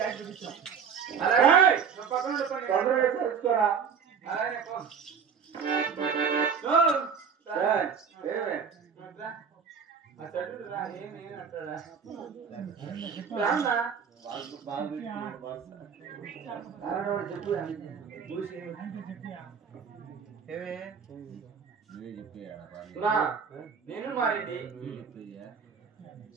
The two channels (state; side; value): quieter; left; 6.7 dB